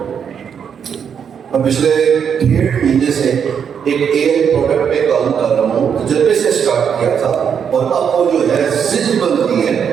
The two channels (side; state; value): left; quieter; 7.5 dB